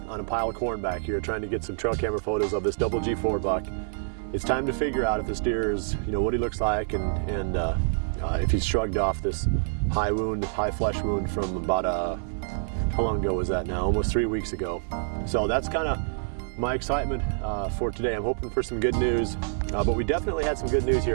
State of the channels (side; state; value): left; silent; 59 dB below the other